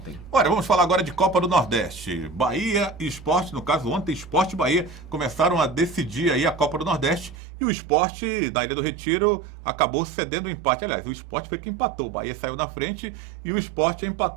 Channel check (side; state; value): left; drops out; at 7.4 s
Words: Olha, vamos falar agora de Copa do Nordeste. Bahia e Sport, no caso ontem, Sport e Bahia começaram a decidir aí a Copa do Nordeste e o Sport da Ilha do Retiro acabou cedendo o empate. Aliás, o Sport foi quem empatou. O Bahia saiu na frente e o Sport